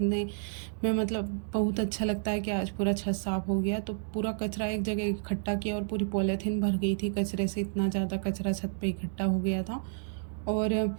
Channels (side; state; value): left; silent; digital silence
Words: में बहुत अच्छा लगता है कि आज पूरा छत साफ़ हो गया। तो पूरा कचरा एक जगह इकट्ठा किया और पूरी पॉलीथीन भर गई थी कचरे से, इतना ज़्यादा कचरा छत पे इकट्ठा हो गया था। और